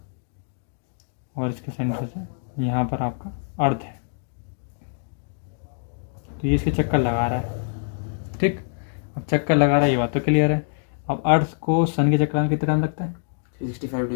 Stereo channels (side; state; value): right; silent; digital silence